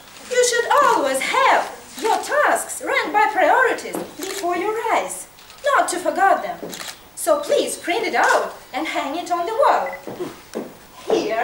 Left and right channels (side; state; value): right; noise; rumble, 28 dB below the sound